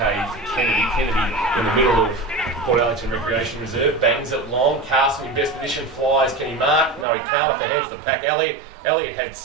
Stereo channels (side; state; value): left; drops out; at 7.1 s